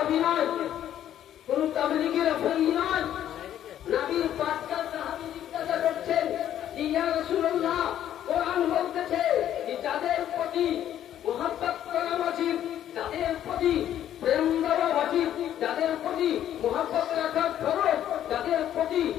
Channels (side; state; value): right; quieter; 11.1 dB